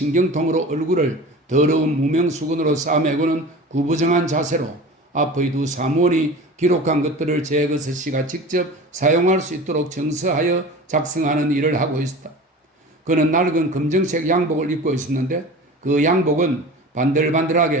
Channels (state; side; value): normal; both; correlation 0.36